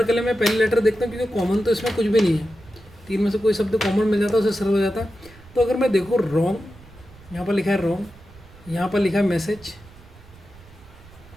के लिए मैं पहले लेटर देखता हूँ, क्योंकि कॉमन तो इसमें कुछ भी नहीं है। तीन में से कोई शब्द कॉमन मिल जाता है, उसे सरल हो जाता है। तो अगर मैं देखूँ रॉन्ग, यहाँ पर लिखा है रॉन्ग, यहाँ पर लिखा है मैसेज,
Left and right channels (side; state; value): right; noise; rumble, 22 dB below the sound